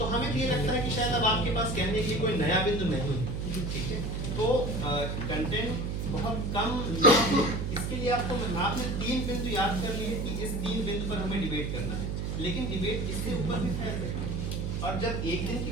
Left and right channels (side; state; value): right; noise; hum, 2 dB below the sound